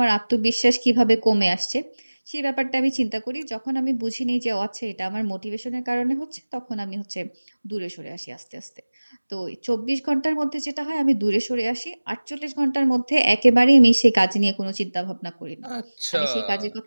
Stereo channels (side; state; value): both; inverted; correlation -1.00